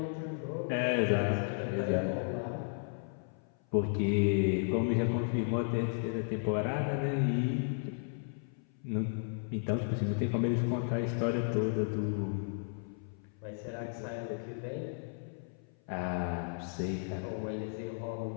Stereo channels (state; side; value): silent; right; 55 dB below the other